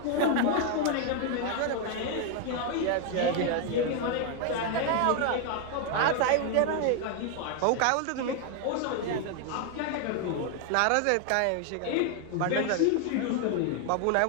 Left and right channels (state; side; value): different; both; correlation 0.01